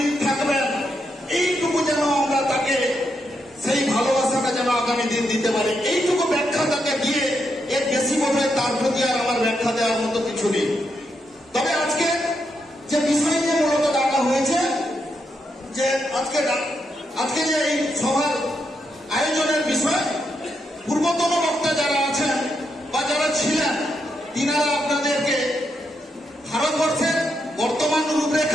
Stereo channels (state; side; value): normal; both; correlation 0.81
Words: থাকবেন। এইটুকু যেন আমরা তাকে সেই ভালোবাসাটা যেন আগামী দিন দিতে পারি, এইটুকু ব্যাখ্যা তাকে দিয়ে এর বেশি বোধ তার প্রতি আর আমার ব্যাখ্যা দেওয়ার মতো কিছু নেই। তবে আজকে যে বিষয় নিয়ে মূলত ডাকা হয়েছে, যে আজকে যে এই সভার আয়োজনের বিষয়, পূর্বতন বক্তা যারা আছেন বা যারা ছিলেন, তিনারা আপনাদেরকে ভারতবর্ষের বর্তমান